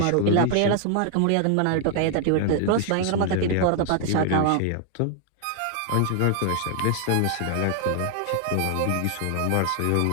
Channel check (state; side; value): different; both; correlation 0.00